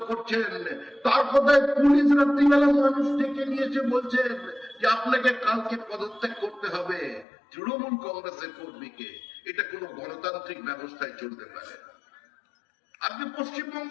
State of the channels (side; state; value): right; drops out; at 7.2 s